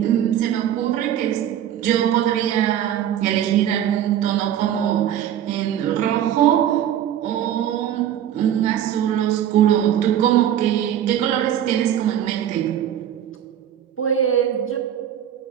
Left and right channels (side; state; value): left; quieter; 10.5 dB